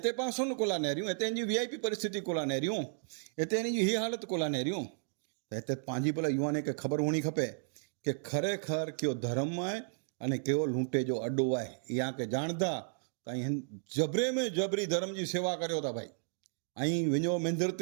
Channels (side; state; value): left; silent; digital silence